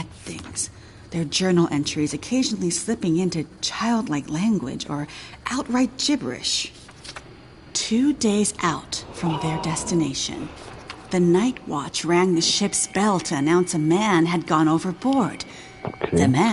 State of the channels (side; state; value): both; identical; correlation 1.00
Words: things, their journal entries occasionally slipping into childlike language or outright gibberish. 2 days out from their destination, the night watch rang the ship's bell to announce a man had gone overboard. The